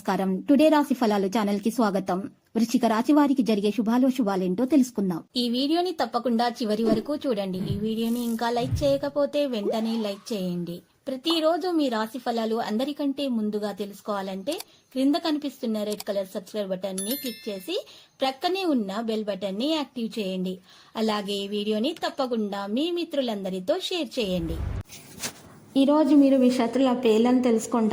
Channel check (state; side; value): identical; both; correlation 1.00